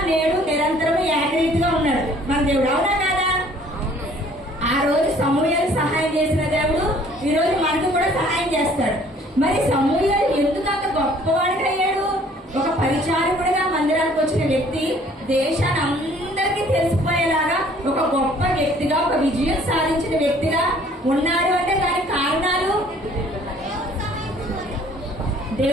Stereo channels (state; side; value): normal; both; correlation 0.56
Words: నేడు నిరంతరం ఏకరీతిగా ఉన్నాడు మన దేవుడు. అవునా కాదా? ఆ రోజు సమూయేలు సహాయం చేసిన దేవుడు ఈ రోజు మనకు కూడా సహాయం చేస్తాడు. మరి సమూయేలు ఎందుకు అంత గొప్పవాడిగా అయ్యాడు? ఒక పరిచారకుడిగా మందిరానికి వచ్చిన వ్యక్తి దేశాన్ని అందరికీ తెలిసిపోయేలాగా ఒక గొప్ప వ్యక్తిగా, ఒక విజయం సాధించిన వ్యక్తిగా ఉన్నాడు అంటే దానికి కారణాలు